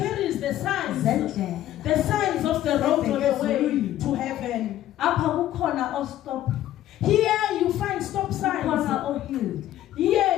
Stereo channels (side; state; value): right; quieter; 13.1 dB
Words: the signs of the road on the way to heaven. Here you find stop signs.